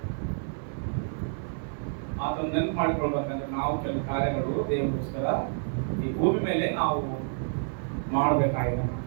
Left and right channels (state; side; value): silent; left; digital silence